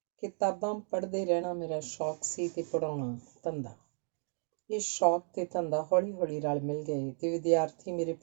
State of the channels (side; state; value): left; silent; digital silence